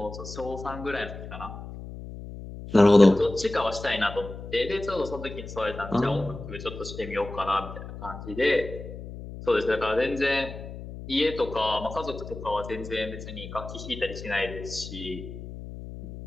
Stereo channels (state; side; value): noise; left; hum, 11 dB below the sound